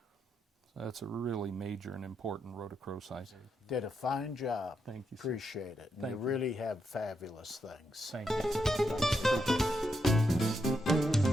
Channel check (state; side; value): normal; both; correlation 0.82